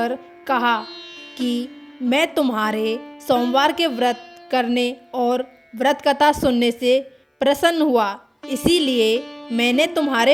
कहा कि मैं तुम्हारे सोमवार के व्रत करने और व्रत कथा सुनने से प्रसन्न हुआ, इसीलिए मैंने तुम्हारे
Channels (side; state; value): both; identical; correlation 1.00